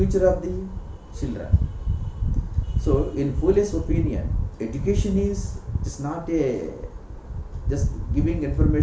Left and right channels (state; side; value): identical; both; correlation 1.00